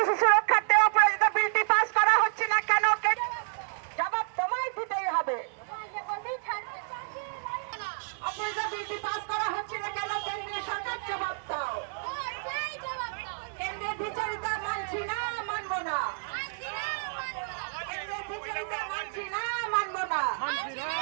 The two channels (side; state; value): left; silent; digital silence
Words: শিশু রক্ষার্থে অপরাজিত বিলটি পাস করা হচ্ছে না কেন জবাব তোমায় দিতেই হবে। অপরাজিত বিলটি পাস করা হচ্ছে না কেন কেন্দ্রীয় সরকার জবাব দাও। কেন্দ্রের দ্বিচারিতা মানছি না, মানব না। কেন্দ্রের দ্বিচারিতা মানছি না, মানব না।